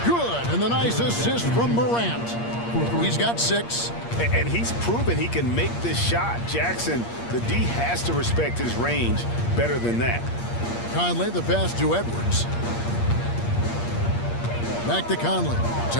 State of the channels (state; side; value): late; right; 8.6 ms